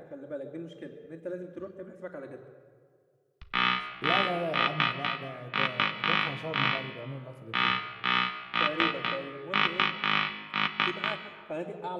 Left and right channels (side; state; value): both; identical; correlation 1.00